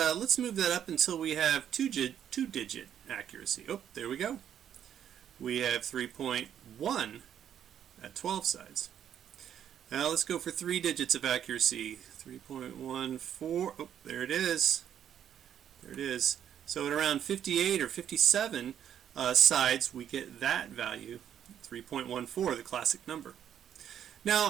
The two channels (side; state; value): left; quieter; 9.6 dB